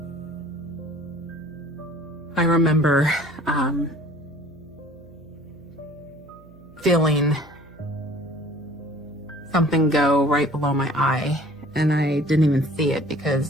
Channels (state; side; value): noise; right; hum, 24 dB below the sound